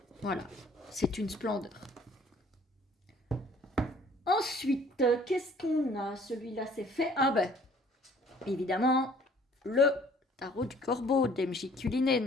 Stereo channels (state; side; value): normal; both; correlation 0.56